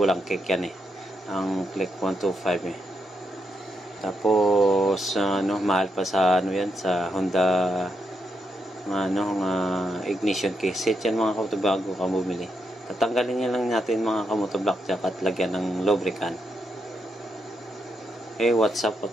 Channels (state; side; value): normal; both; correlation 0.82